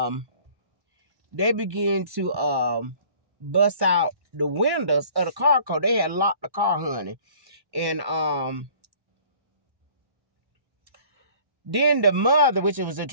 bust out the windows of the car because they had locked the car, honey. And then the mother, which was the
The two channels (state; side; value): late; left; 1.1 ms